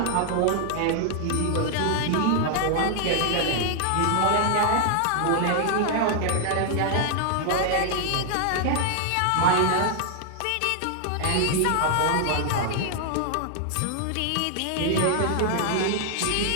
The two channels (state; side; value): different; both; correlation 0.00